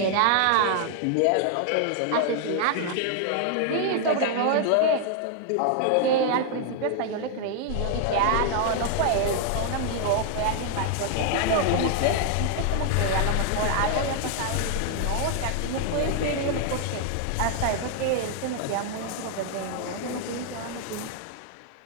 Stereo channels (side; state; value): both; different; correlation 0.00